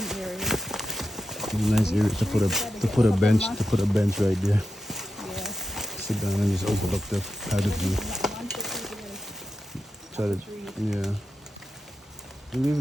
areas. Nice area to put a bench right there. Yeah. Sit down and just open up the view. Try to, yeah. You leave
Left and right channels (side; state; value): both; normal; correlation 0.89